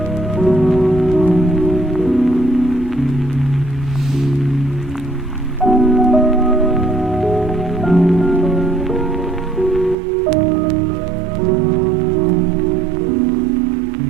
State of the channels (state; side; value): drops out; left; at 10.0 s